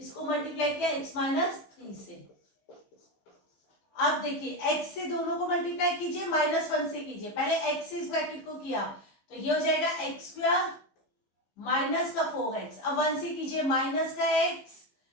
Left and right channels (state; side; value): late; right; 15 ms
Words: मल्टीप्लाई किया x माइनस 3 से। अब देखिए x से दोनों को मल्टीप्लाई कीजिए, माइनस 1 से कीजिए, पहले x से इस ब्रैकेट को किया तो ये हो जाएगा x स्क्वायर माइनस का 4x, अब 1 से कीजिए माइनस का x